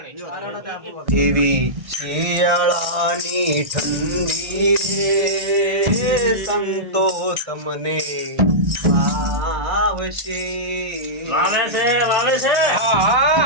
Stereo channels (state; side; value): late; left; 1.6 ms